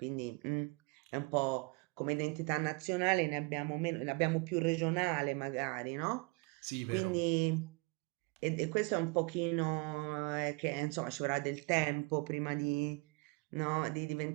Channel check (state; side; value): quieter; left; 28.1 dB